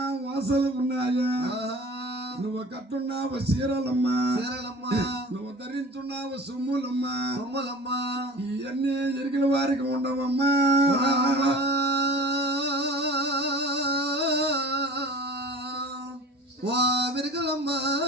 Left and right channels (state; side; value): normal; both; correlation 0.40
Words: వాసనలు ఉన్నాయా. ఆహా, నువ్వు కట్టున్నావు చీరలమ్మా, చీరలమ్మా నువ్వు ధరించున్నావు సొమ్ములమ్మా. బొమ్మలమ్మా ఇవన్నీ ఎరిగిన వారికి ఉండవమ్మా. ఓ వెరగలమ్మా